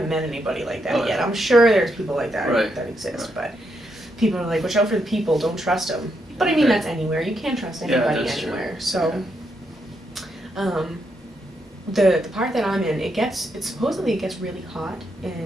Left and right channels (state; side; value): normal; both; correlation 0.80